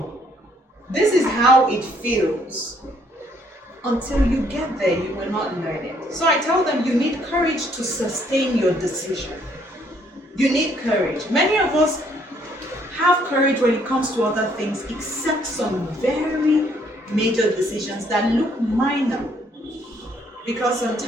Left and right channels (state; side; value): normal; both; correlation 0.66